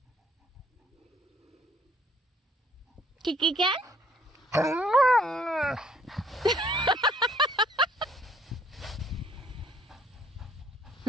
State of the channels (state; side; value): normal; both; correlation 0.62